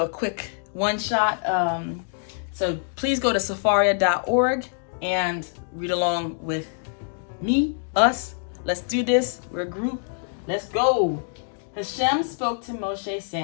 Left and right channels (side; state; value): right; silent; digital silence